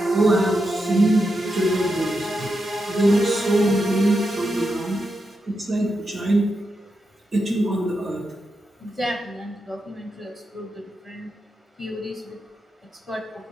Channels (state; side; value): normal; both; correlation 0.86